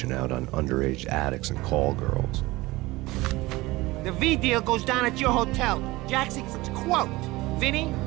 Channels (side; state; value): left; quieter; 20.2 dB